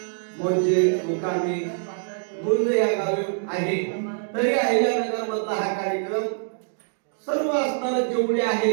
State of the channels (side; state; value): left; silent; digital silence